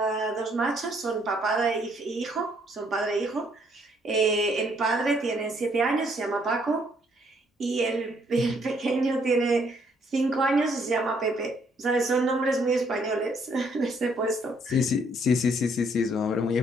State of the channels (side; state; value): both; normal; correlation 0.68